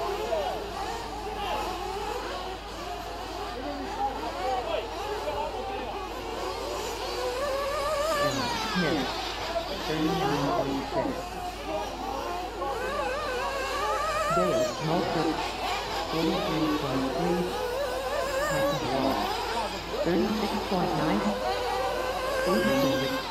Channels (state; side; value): identical; both; correlation 1.00